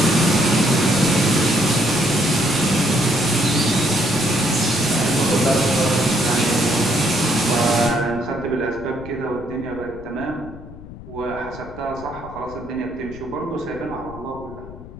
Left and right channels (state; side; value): noise; left; rumble, 15 dB below the sound